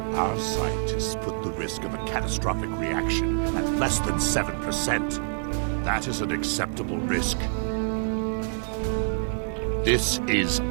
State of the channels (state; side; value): silent; left; digital silence